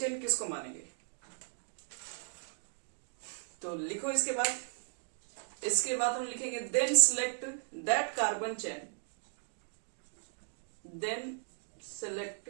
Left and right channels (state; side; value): silent; left; digital silence